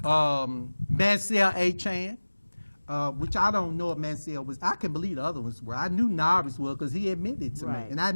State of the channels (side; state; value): both; inverted; correlation -1.00